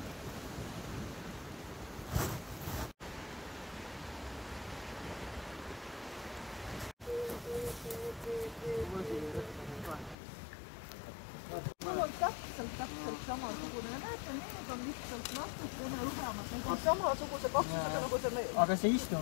Mul on täpselt samasugune. Näete, need on lihtsalt natukene õhemad. Need on samasuguse kaksusega nagu see meil. Aga see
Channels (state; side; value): drops out; right; at 10.2 s